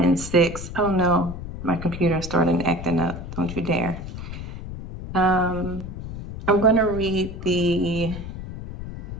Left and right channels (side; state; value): left; noise; rumble, 9 dB below the sound